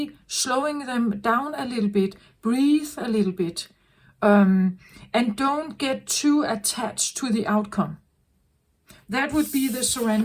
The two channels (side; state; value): both; identical; correlation 1.00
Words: slowing them down a little bit, breathe a little bit, And don't get too attached to the outcome. That would be the